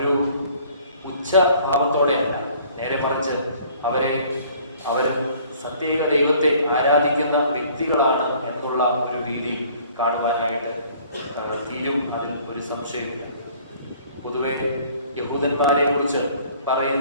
ഉച്ചഭാവത്തോടെയല്ല, നേരെ മറിച്ച് അവർ സത്യേക ദൈവത്തെ ആരാധിക്കുന്ന വ്യക്തികളാണ് എന്നുള്ള ഒരു രീതിയിൽ കാണുവാനായിട്ട് തീരും. അതിൽ ഒരു സംശയമില്ല. പൊതുവെ യഹൂദന്മാരെ കുറിച്ച്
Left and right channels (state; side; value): inverted; both; correlation -0.55